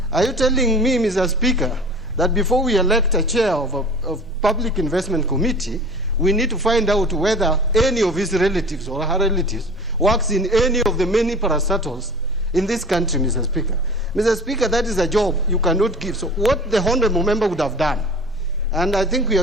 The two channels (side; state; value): both; normal; correlation 0.41